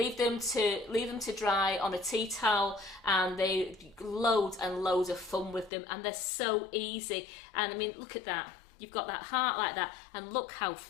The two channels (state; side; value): drops out; right; at 5.7 s